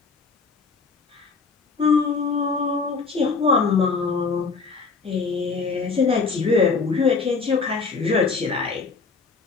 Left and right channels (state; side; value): quieter; right; 4.6 dB